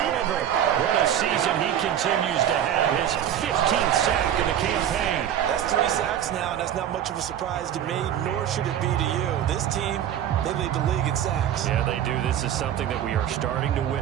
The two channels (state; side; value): quieter; left; 10.3 dB